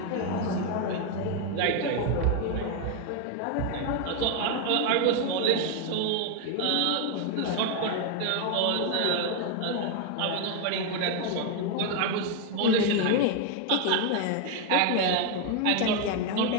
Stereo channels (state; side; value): different; both; correlation 0.01